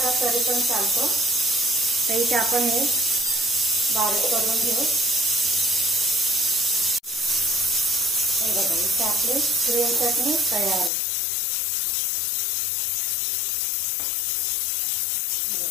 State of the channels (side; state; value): right; drops out; at 10.9 s